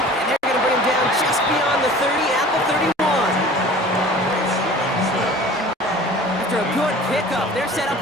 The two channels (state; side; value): normal; both; correlation 0.44